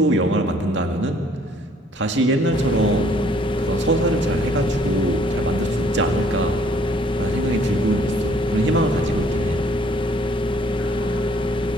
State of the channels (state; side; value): normal; both; correlation 0.61